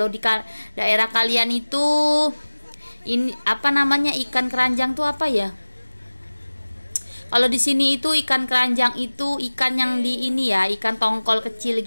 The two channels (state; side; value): inverted; both; correlation -1.00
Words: di daerah kalian itu ini apa namanya, ikan keranjang tuh apa ya? Kalau di sini itu ikan keranjang itu ikan yang di ini ya, ikan tongkol kecil